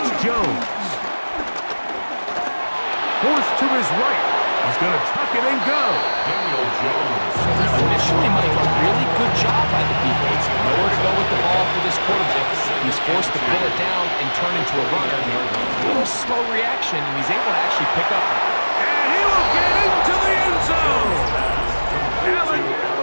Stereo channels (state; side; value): inverted; both; correlation -1.00